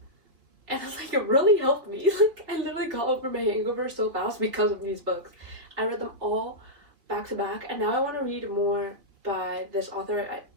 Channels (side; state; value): left; late; 3.4 ms